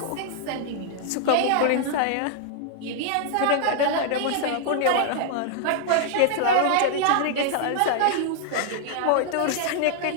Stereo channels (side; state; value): both; different; correlation 0.00